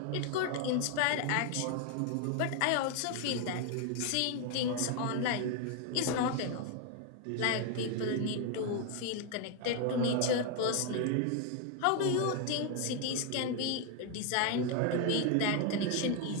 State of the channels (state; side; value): different; both; correlation 0.00